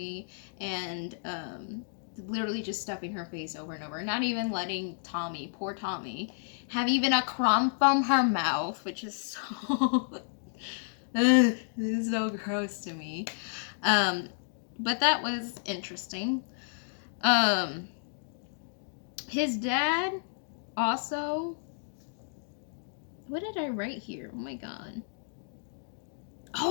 and literally just stuffing her face over and over, not even letting Tommy, poor Tommy, have even a crumb from her mouth, which is so this is so gross to me. But that was interesting. His dad also, what did I write here? Oh my god.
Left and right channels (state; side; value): silent; right; digital silence